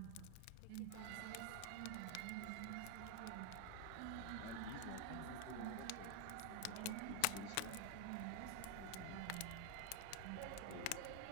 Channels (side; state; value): both; different; correlation 0.00